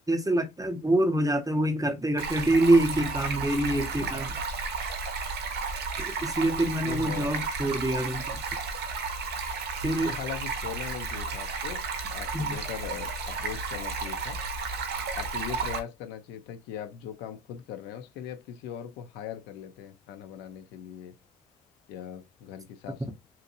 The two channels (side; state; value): both; normal; correlation 0.62